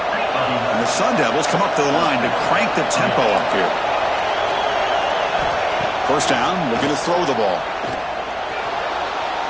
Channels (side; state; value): both; identical; correlation 1.00